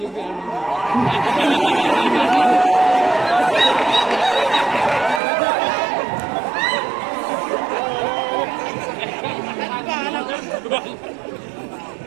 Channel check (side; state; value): left; drops out; at 5.2 s